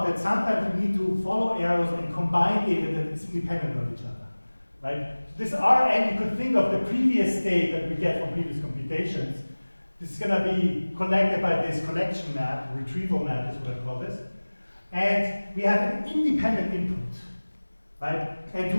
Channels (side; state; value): both; inverted; correlation -1.00